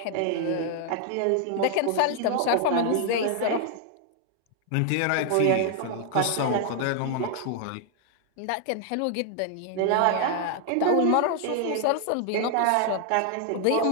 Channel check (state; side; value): different; both; correlation 0.00